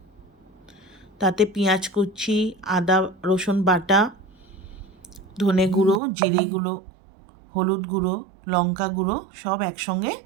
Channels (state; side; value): drops out; left; at 6.0 s